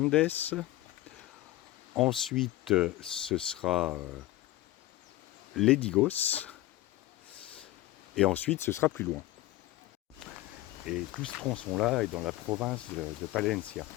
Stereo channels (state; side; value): quieter; right; 16.3 dB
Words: Ensuite, ce sera Ledigos. Et ensuite, ce sera plus loin. Et tout ce tronçon-là est dans la province de Palencia.